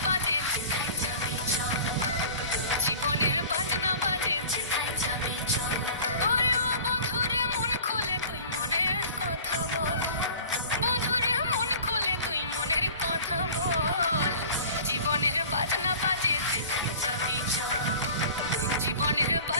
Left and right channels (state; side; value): inverted; both; correlation -0.42